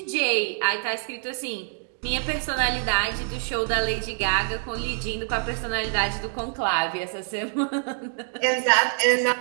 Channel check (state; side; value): silent; left; digital silence